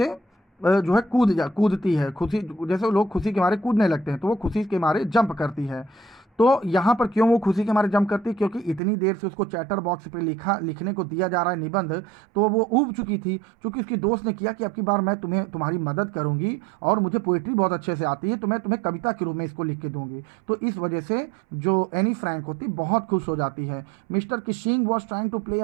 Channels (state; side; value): drops out; left; at 8.8 s